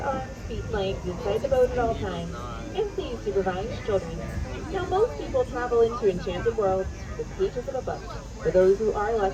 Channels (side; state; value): both; identical; correlation 1.00